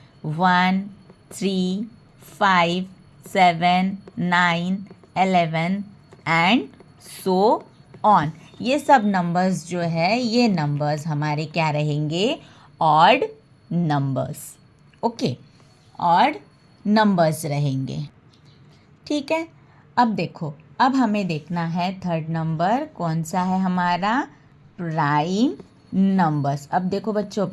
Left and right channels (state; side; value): identical; both; correlation 1.00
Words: 1, 3, 5, 7, 9, 11 and so on. ये सब नंबर्स जो है, ये नंबर्स हमारे क्या रहेंगे? Odd numbers. Okay, odd numbers रहेंगे। ठीक है, अब देखो, अब हमें देखना है थर्ड नंबर कौन सा है हमारा? Prime numbers. अब देखो बच्चों,